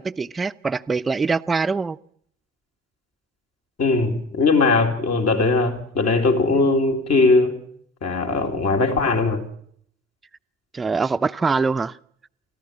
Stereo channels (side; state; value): both; normal; correlation 0.42